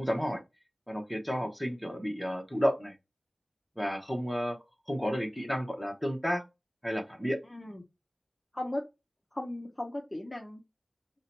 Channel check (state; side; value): normal; both; correlation 0.98